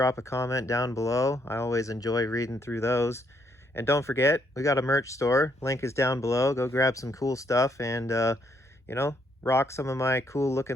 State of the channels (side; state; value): both; normal; correlation 0.72